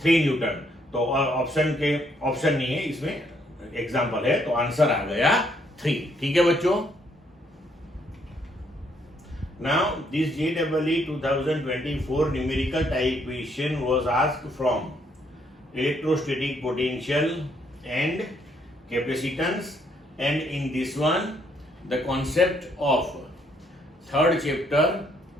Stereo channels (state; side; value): normal; both; correlation 0.70